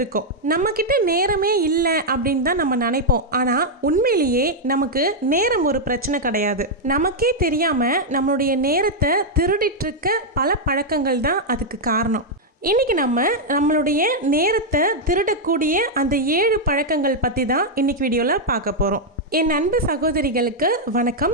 நம்மக்கிட்ட நேரமே இல்லை அப்படின்னு தான் நம்ம நினைப்போம். ஆனால் உண்மையிலேயே நமக்கு நேரம் ஒரு பிரச்சனை கிடையாது. நமக்கே தெரியாமல் நம்மளுடைய நேரத்தை திருடிட்டு இருக்க பல பழக்கங்கள் தான் அதுக்கு காரணம். இன்றைக்கி நம்மளுடைய நேரத்தை திருடக்கூடிய அந்த 7 பழக்கங்கள் பற்றி தான் இன்றைக்கி வீடியோவில் பார்க்க போகிறோம். என் அன்பு சகோதரிகளுக்கு வணக்கம்.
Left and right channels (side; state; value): both; normal; correlation -0.02